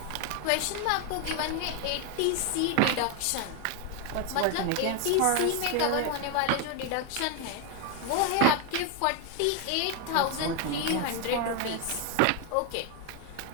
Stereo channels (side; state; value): both; different; correlation 0.01